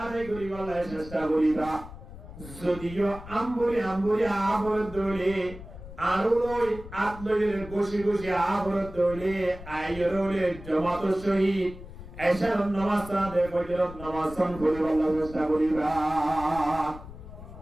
করিবার চেষ্টা করিবা যদিও আম্বুরি আবর দলে আরুলই আত্মজের গোশি গোশি আবর দলে আইরলে জমাত শহীদ এশার নামাজ সাদে ফজরত নামাজ সান করিবার চেষ্টা করিবা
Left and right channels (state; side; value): noise; left; rumble, 14 dB below the sound